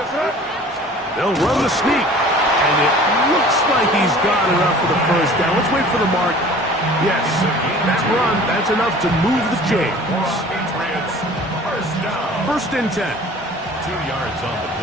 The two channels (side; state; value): both; normal; correlation 0.46